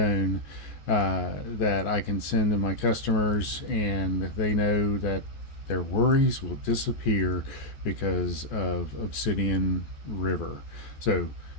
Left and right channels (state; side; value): late; right; 14 ms